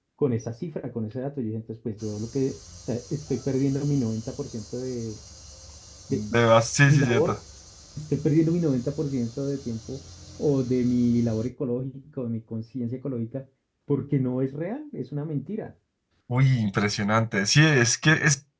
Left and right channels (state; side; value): identical; both; correlation 1.00